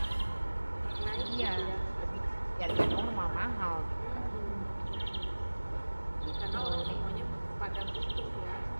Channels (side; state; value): both; inverted; correlation -1.00